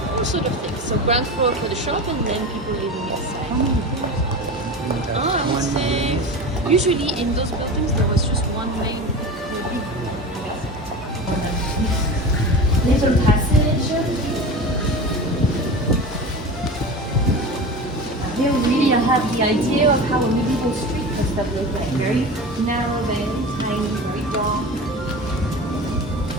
all sort of things. So ground floor for the shop and then people living inside. I would say usually in those buildings there was just one main little passage. Here really I have the idea of how a medieval street must have looked like. Very narrow, very tiny, very dark.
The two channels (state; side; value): normal; both; correlation 0.30